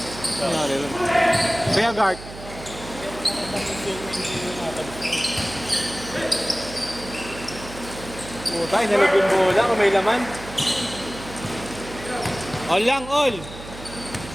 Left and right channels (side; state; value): right; noise; hum, 14 dB below the sound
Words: Kaya guard. Puta, inalog yung bola kung may laman. All lang, all.